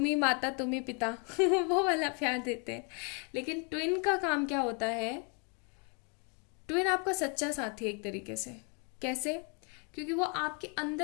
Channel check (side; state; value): right; quieter; 35.9 dB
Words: ही माता तुम ही पिता वो वाला प्यार देते हैं। लेकिन ट्विन का काम क्या होता है, ट्विन आपका सच्चा साथी है एक तरीके से। कैसे? क्योंकि वो आपके